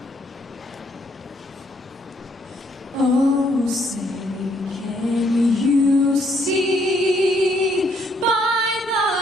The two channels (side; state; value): both; normal; correlation 0.70